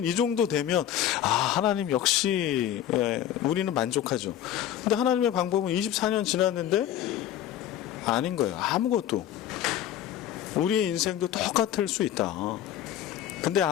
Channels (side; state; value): right; quieter; 11.3 dB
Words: 이 정도 되면 하나님 역시 우리는 만족하죠. 근데 하나님의 방법은 24년 지났는데 아닌 거예요. 아무것도. 우리의 인생도 똑같을 수 있다. 근데